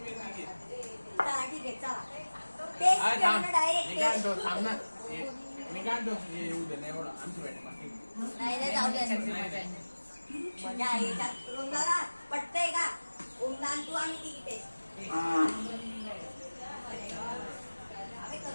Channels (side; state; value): both; inverted; correlation -1.00